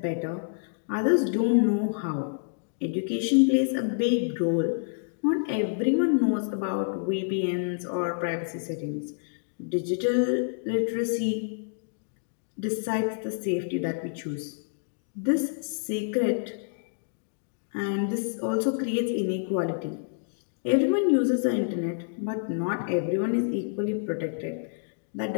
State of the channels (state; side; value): silent; right; digital silence